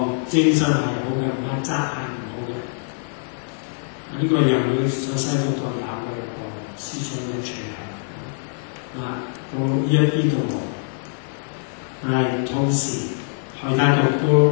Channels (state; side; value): silent; right; 63 dB below the other